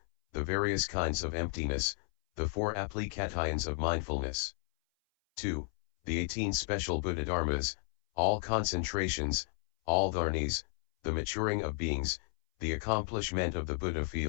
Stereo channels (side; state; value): right; silent; 56 dB below the other